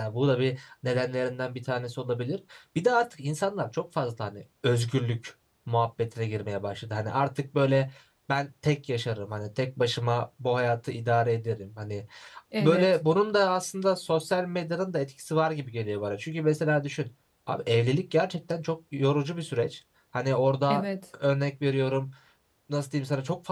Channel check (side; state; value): both; identical; correlation 1.00